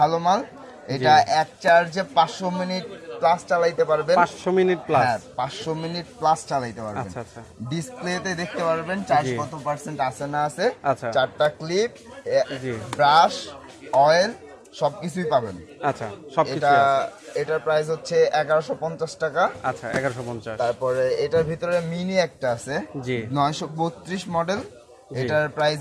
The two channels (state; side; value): identical; both; correlation 1.00